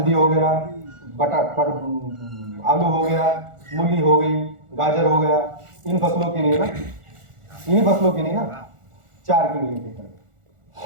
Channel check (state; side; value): late; left; 1.4 ms